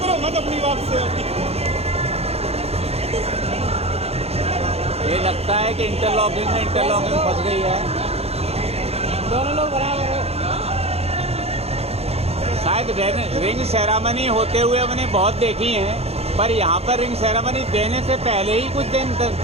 मत अपनी बात से। ये लगता है कि इंटरलॉकिंग फंस गई है। दोनों लोग बराबर है। शायद रिंग सेरेमनी होते हुए मैंने बहुत देखी है, पर यहाँ पर रिंग सेरेमनी देने से पहले ही कुछ दिन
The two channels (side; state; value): left; late; 0.29 ms